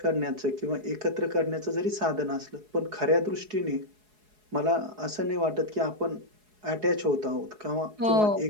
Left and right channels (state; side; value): late; left; 4.7 ms